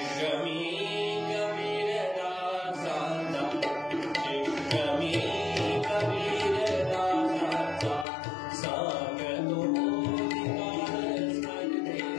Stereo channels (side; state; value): right; drops out; at 8.1 s